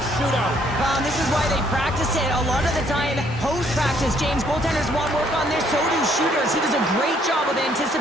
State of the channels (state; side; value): normal; both; correlation 0.66